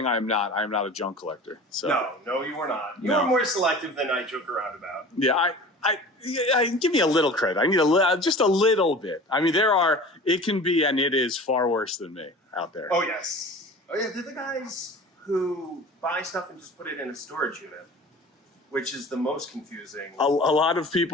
I am not a junk collector. So No, you are not. You are more selective than I joke around about. Yeah, I give me a little credit. I need just a little bit. I mean, it can be, and it is far worse than me out there. Oh yes. Oh yeah, they're the guys who buy stuff and just put it in a storage unit, which is the most confusing. A lot of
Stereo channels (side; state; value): both; normal; correlation 0.40